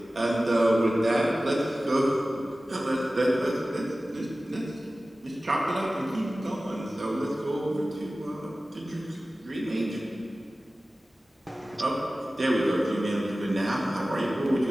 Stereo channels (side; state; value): both; normal; correlation 0.96